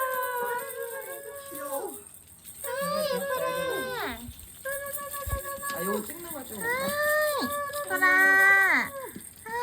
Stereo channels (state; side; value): identical; both; correlation 1.00